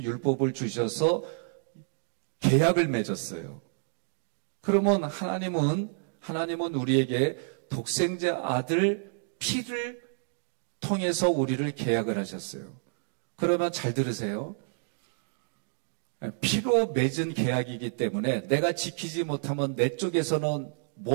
율법을 주셔서 계약을 맺었어요. 그러면 하나님은 우리에게 독생자 아들 피를 통해서 우리를 계약을 하셨어요. 그러면 잘 들으세요. 피로 맺은 계약이기 때문에 내가 지키지 못하면 내 쪽에서는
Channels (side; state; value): left; silent; digital silence